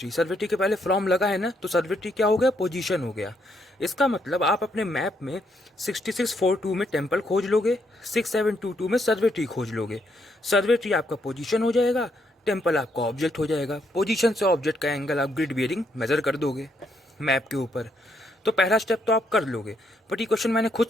survey tree के पहले फ्रॉम लगा है ना, तो सर्वे ट्री क्या हो गया, पोजीशन हो गया। इसका मतलब आप अपने मैप में 6642 में टेम्पल खोज लोगे, 6722 में सर्वे ट्री खोज लोगे। सर्वे ट्री आपका पोजीशन हो जाएगा, टेम्पल आपका ऑब्जेक्ट हो जाएगा। पोजीशन से ऑब्जेक्ट का एंगल आप ग्रिड बियरिंग मेजर कर दोगे मैप के ऊपर। तो पहला स्टेप तो आप कर लोगे, बट ये क्वेश्चन मैंने खुद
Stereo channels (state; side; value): normal; both; correlation 0.75